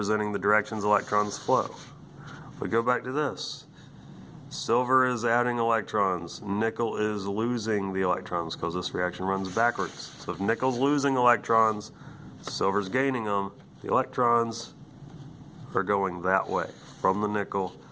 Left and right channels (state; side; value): identical; both; correlation 1.00